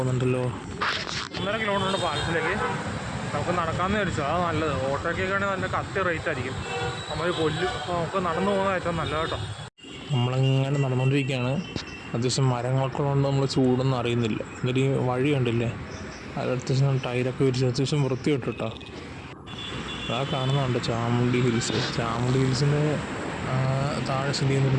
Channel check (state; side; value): identical; both; correlation 1.00